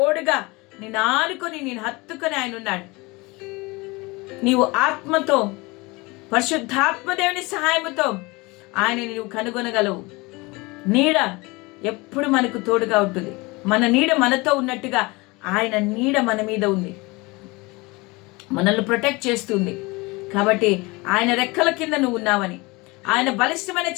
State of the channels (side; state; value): right; quieter; 24.5 dB